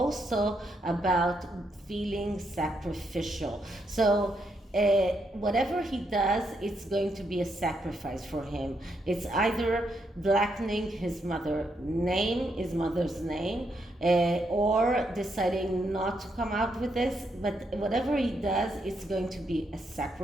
about feeling sacrificial. So whatever he does, it's going to be a sacrifice for him. It's either blackening his mother's name, or deciding not to come out with this. But whatever he does, it's going to be a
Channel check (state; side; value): normal; both; correlation 0.78